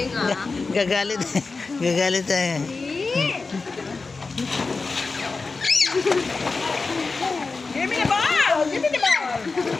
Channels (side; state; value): right; quieter; 4.1 dB